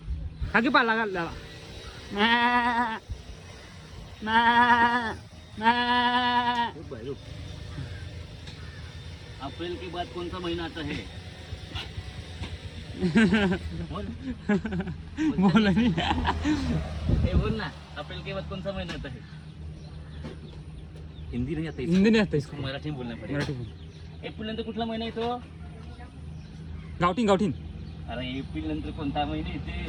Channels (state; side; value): identical; both; correlation 1.00